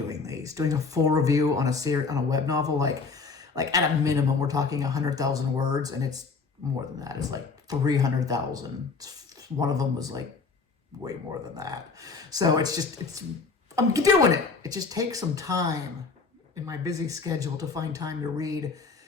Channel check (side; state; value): right; quieter; 4.6 dB